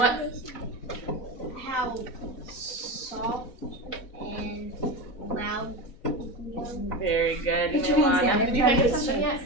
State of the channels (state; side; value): late; right; 4.0 ms